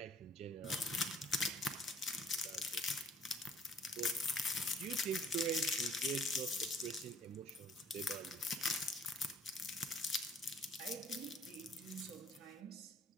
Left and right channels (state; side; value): normal; both; correlation 0.60